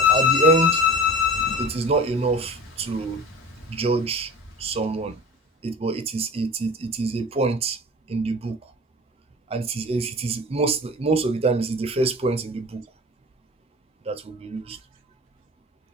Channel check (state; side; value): normal; both; correlation 0.37